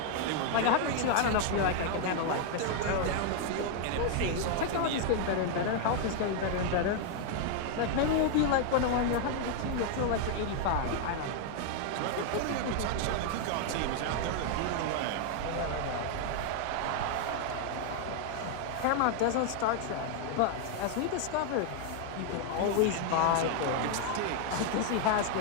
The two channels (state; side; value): different; both; correlation 0.00